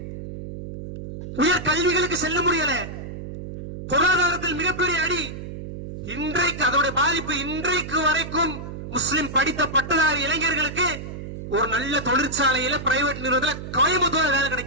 உயர் கல்விகளுக்கு செல்ல முடியல, பொருளாதாரத்தில் மிகப்பெரிய அடி. இன்றைக்கு அதோட பாதிப்பு இன்றைக்கு வரைக்கும் முஸ்லிம் படித்த பட்டதாரி இளைஞர்களுக்கு ஒரு நல்ல தொழிற்சாலையில, பிரைவேட் நிறுவனத்தில் கோயம்புத்தூர் வேலை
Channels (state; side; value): noise; right; hum, 9 dB below the sound